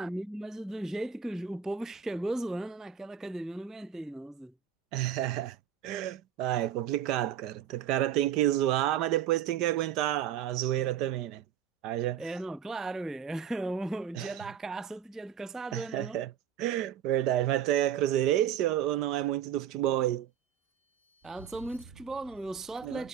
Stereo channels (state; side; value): quieter; left; 9.4 dB